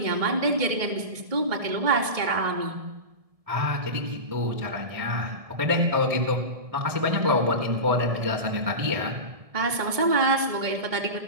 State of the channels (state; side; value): late; left; 1.7 ms